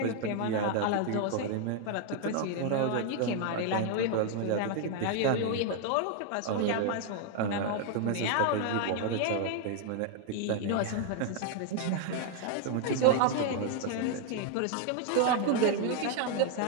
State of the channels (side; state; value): both; different; correlation 0.00